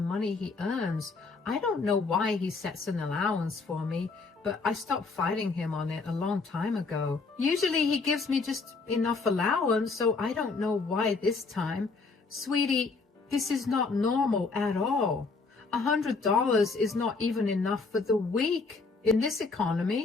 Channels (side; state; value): right; quieter; 4.1 dB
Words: he earns. I don't know why he sets an allowance for me, but I stopped fighting him on it a long time ago. Usually he gives me just enough allowance, so I don't know why this time. Sweetie, this is not normal at all. $100 is not even enough for the week in this